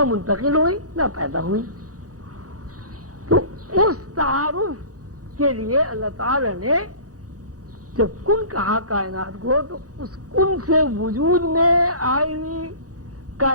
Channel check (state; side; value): late; left; 0.67 ms